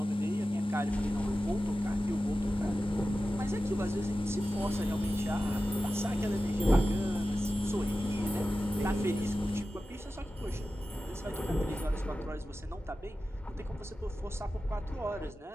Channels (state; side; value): normal; both; correlation 0.94